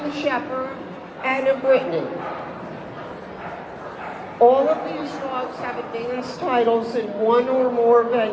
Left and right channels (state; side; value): identical; both; correlation 1.00